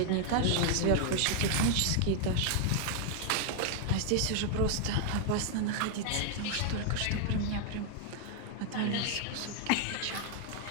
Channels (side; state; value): both; different; correlation 0.00